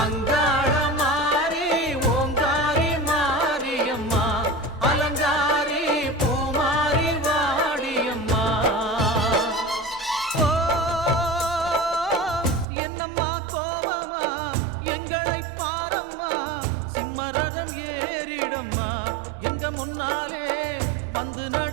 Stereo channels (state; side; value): drops out; left; at 12.7 s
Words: அங்காள மாறி ஓங்காரி மாரியம்மா அலங்காரி பூமாரி வாடியம்மா ஓ என்னம்மா கோவமா எங்களை பாரம்மா சிம்மரதம் ஏறிடம்மா எங்க முன்னாலே வந்து